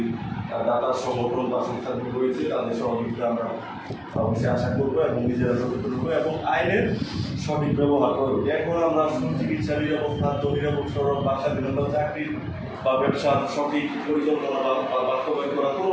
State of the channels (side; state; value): both; identical; correlation 1.00